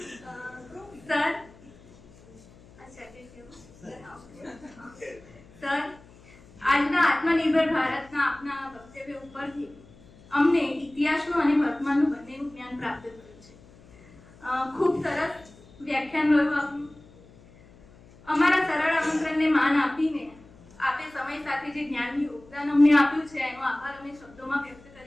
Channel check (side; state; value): left; noise; hum, 25 dB below the sound